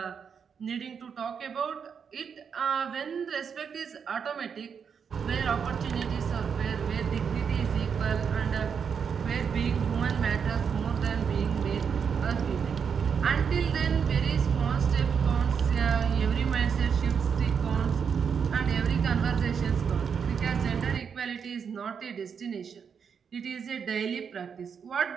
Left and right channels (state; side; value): quieter; left; 6.7 dB